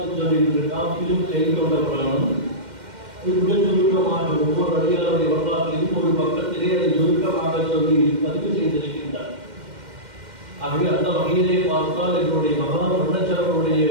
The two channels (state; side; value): late; left; 2.1 ms